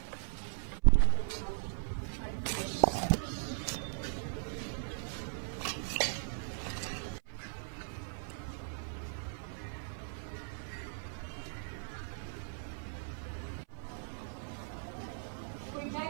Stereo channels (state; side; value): silent; left; 52 dB below the other